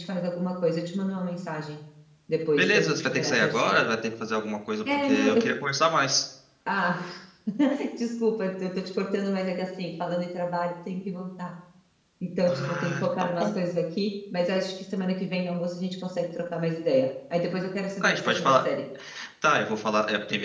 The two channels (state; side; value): identical; both; correlation 1.00